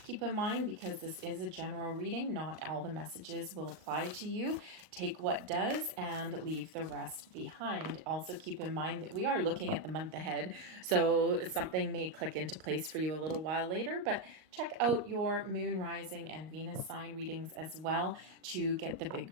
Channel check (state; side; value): late; left; 38 ms